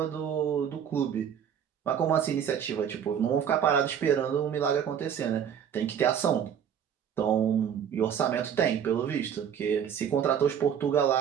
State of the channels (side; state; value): left; quieter; 8.5 dB